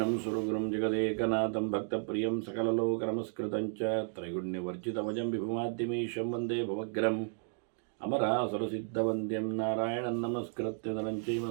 सुरगुरुं जगदेकनाथं भक्तप्रियं सकललोकनमस्कृतं च त्रैगुण्यवर्जितमजं विभुमाद्यमीशं वन्दे भवग्रम् अमरासुरसिद्धवन्द्यं नारायणं नमस्कृत्य नरं चैव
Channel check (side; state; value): left; silent; 56 dB below the other